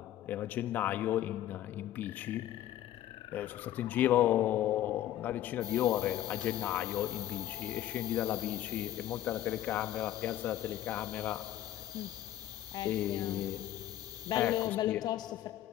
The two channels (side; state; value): right; quieter; 12.8 dB